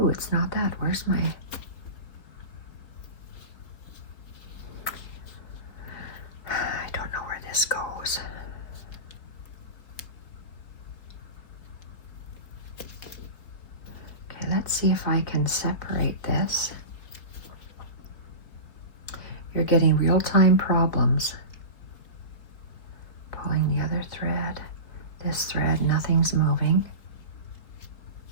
it's not that. Where's my... I don't know where this goes. Okay, let's see if I can separate this. You're getting real-time problems. Pulling the other thread. This thread, nothing's moving.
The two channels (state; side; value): late; right; 4.5 ms